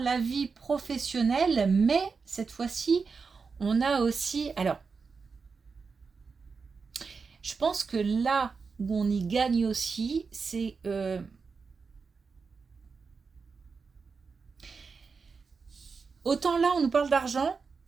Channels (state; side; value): quieter; left; 5.0 dB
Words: vie professionnelle, mais cette fois-ci, on a aussi... Alors, je pense que là où on y gagne aussi, c'est... autant là, on nous parle d'argent,